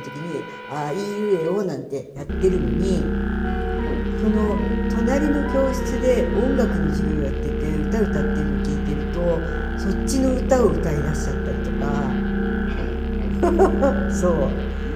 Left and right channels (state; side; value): identical; both; correlation 1.00